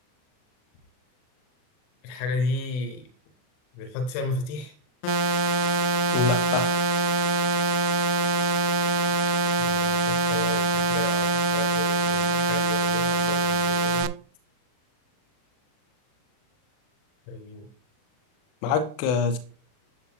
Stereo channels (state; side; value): late; right; 39 ms